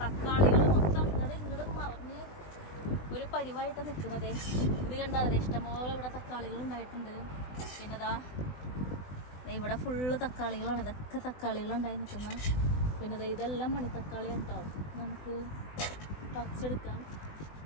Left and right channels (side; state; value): right; late; 20 ms